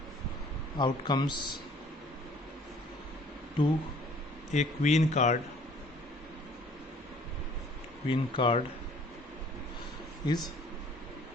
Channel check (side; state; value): both; normal; correlation 0.56